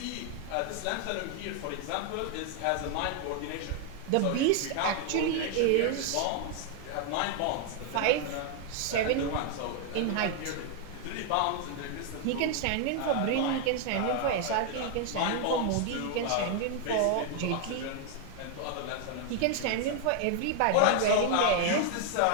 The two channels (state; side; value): different; both; correlation 0.00